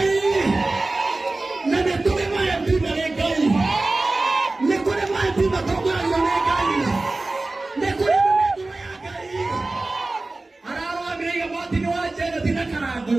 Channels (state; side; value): quieter; left; 3.1 dB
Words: Na nĩ tũrĩ ma-MP marĩ Ngai. Nĩ kũrĩ ma-MP matongoragio nĩ Ngai. Nĩ kũrĩ mĩmĩngũrũ ya Ngai. Ararũgamĩrĩire Martin Wanjane ti na Karangũ.